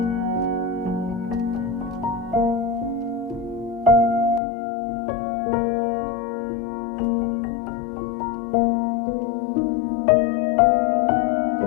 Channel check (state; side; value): drops out; right; at 4.4 s